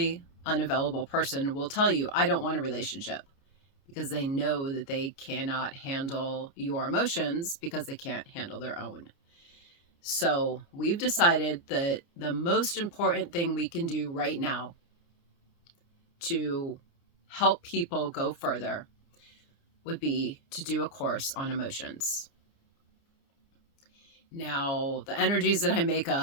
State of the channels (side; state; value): right; late; 29 ms